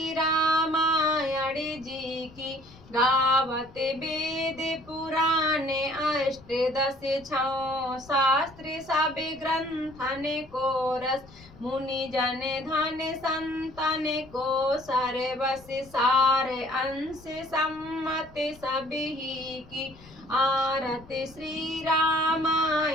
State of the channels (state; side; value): noise; left; rumble, 22 dB below the sound